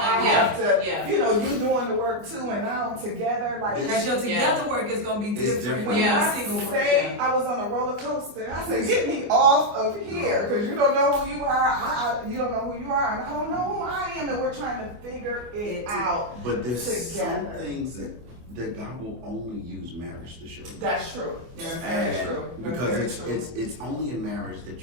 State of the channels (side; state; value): left; late; 24 ms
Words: have to, Yeah. you know, you doing the work too, and now together, like. Because your together work is going to be It's different different. than Yeah. your single work. Say I was on a roller coaster. I said, "Get me off of here, because you don't know who you are. You don't know who you are, and I don't know who I am, and we're trying to figure it out." But there's some Together. things that God will only use marriage to show you. That's true. That's very true. Because it's only in marriage